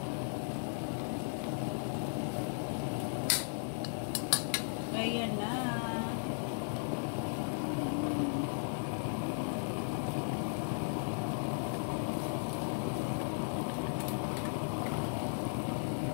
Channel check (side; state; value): right; silent; digital silence